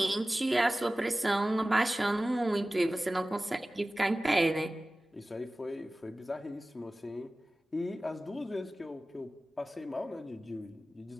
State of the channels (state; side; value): normal; both; correlation 0.97